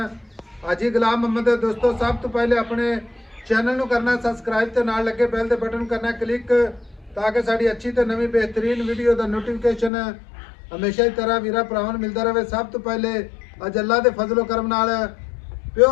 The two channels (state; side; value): drops out; right; at 9.9 s